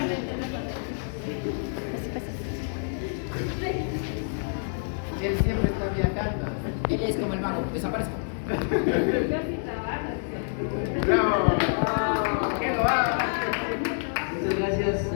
el teléfono. Él siempre está viajando. Él es como el mago. Desaparezco. Yo sí trabajo. Bravo. Que lo abra. Muchas gracias,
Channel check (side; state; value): right; silent; digital silence